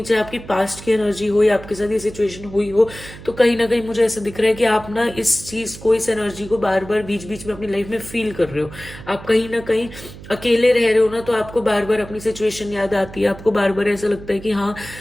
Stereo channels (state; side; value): noise; right; hum, 15 dB below the sound